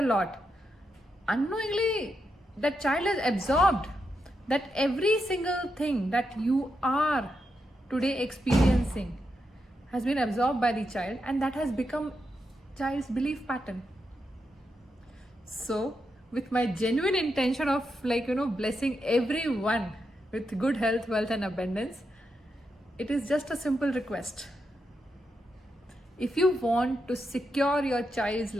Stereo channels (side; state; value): both; normal; correlation 0.84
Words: lot, unknowingly that child has absorbed that every single thing that you are today experiencing has been absorbed by the child, and that has become child's belief pattern. So with my genuine intention of blessing everyone with good health, wealth and abundance, it is just a simple request. If you want to secure your child's